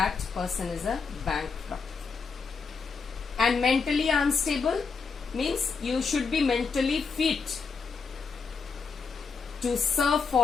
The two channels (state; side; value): quieter; right; 5.1 dB